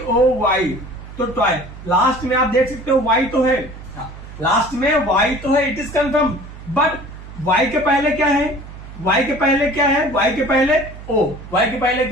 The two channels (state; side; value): noise; right; hum, 14 dB below the sound